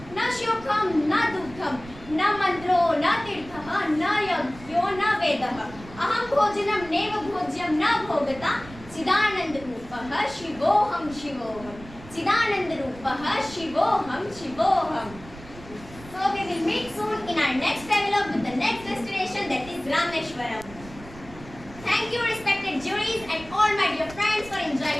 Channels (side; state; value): right; noise; rumble, 18 dB below the sound